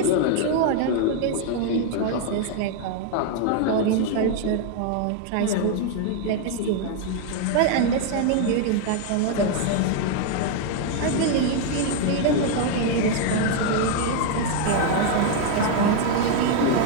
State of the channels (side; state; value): both; different; correlation 0.00